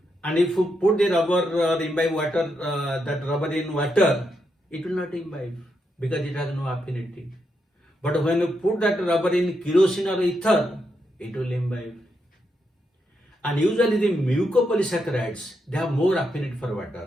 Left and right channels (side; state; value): both; normal; correlation 0.82